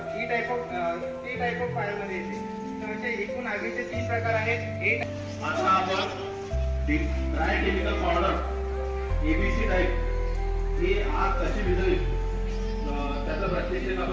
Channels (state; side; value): identical; both; correlation 1.00